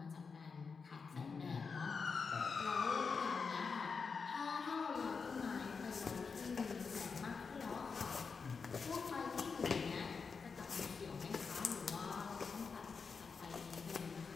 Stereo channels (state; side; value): quieter; right; 5.2 dB